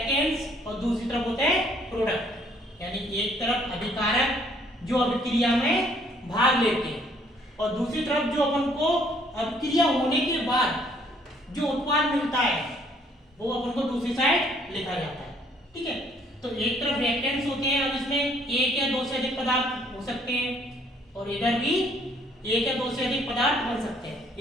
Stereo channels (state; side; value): normal; both; correlation 0.63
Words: और दूसरी तरफ होते हैं प्रोडक्ट। यानी एक तरफ अभिकारक जो अभिक्रिया में भाग लेते हैं और दूसरी तरफ जो अपन को अभिक्रिया होने के बाद जो उत्पाद मिलता है वो अपन को दूसरी साइड लिखा जाता है। ठीक है, तो एक तरफ रिएक्टेंट्स होते हैं। अब इसमें एक या दो से अधिक पदार्थ हो सकते हैं और इधर भी एक या दो से अधिक पदार्थ बन सकते हैं।